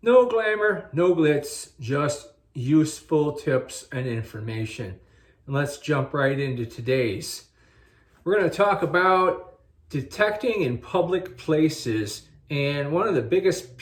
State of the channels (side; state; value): both; identical; correlation 1.00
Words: glamour, no glitz, just useful tips and information. And let's jump right into today's. We're going to talk about detecting in public places and one of the biggest